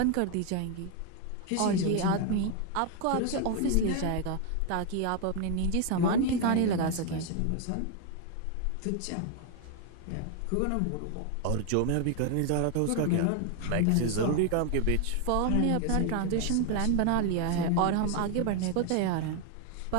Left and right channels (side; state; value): both; different; correlation 0.01